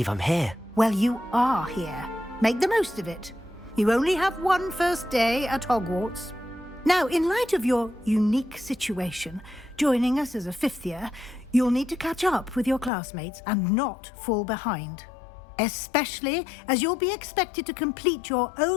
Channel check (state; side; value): drops out; right; at 12.9 s